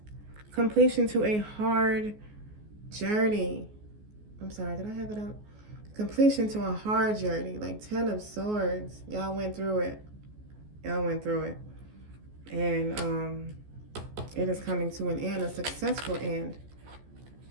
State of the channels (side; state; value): left; late; 14 ms